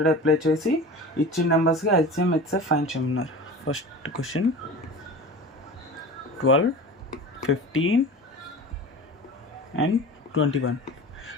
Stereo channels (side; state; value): both; normal; correlation 0.35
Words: apply చేసి ఇచ్చిన నెంబర్స్కి LCM HCF find చేయమన్నారు. First question 12, 15 and 21.